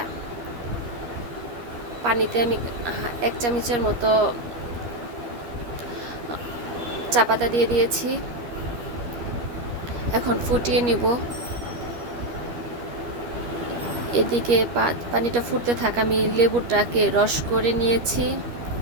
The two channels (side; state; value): left; late; 13 ms